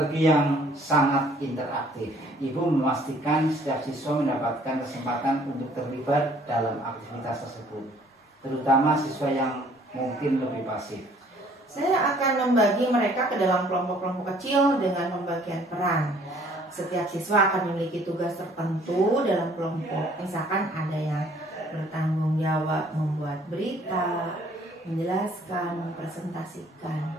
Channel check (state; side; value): normal; both; correlation 0.58